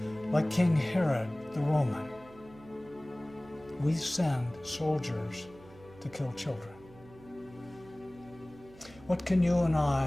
like King Herod the Roman, we send soldiers to kill children. What can you and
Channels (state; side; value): noise; right; hum, 22 dB below the sound